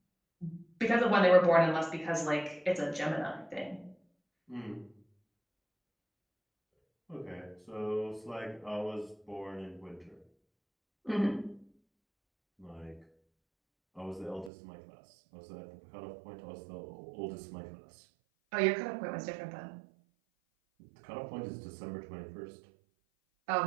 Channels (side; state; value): left; drops out; at 14.5 s